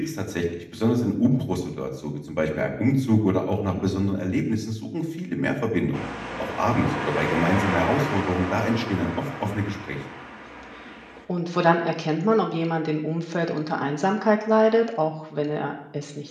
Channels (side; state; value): both; identical; correlation 1.00